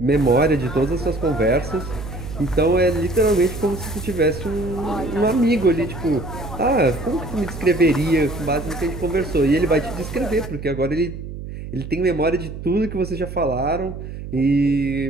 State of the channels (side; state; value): right; noise; hum, 10 dB below the sound